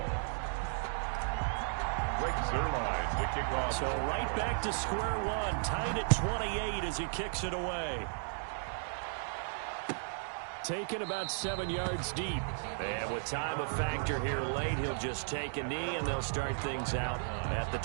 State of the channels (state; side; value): silent; left; digital silence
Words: Greg Zuerlein to kick off. So right back to square one, tied at 28 as he kicks it away. Taken about 7 yards deep. And with time a factor here late, he'll just take a knee and they'll start things out at the